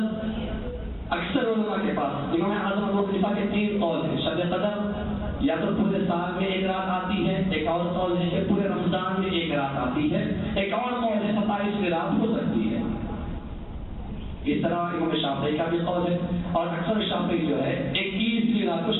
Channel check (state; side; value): identical; both; correlation 1.00